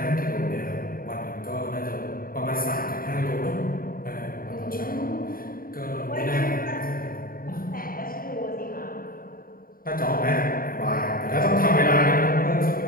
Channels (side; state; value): right; late; 0.42 ms